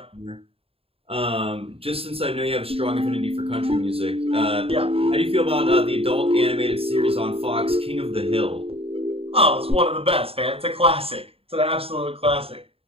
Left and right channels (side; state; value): left; late; 0.28 ms